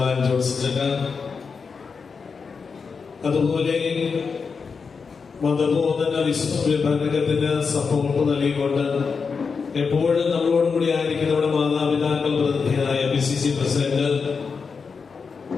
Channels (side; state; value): right; quieter; 5.3 dB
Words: ജോൺസൺ, അതുപോലെ മതബോധന വിഭാഗത്തിന് സപ്പോർട്ട് നൽകിക്കൊണ്ട് എപ്പോഴും നമ്മളോടും കൂടി ആയിരിക്കും നമ്മുടെ മാതാപിതാക്കൾ പ്രതിനിധിയായ PCC പ്രസിഡന്റ്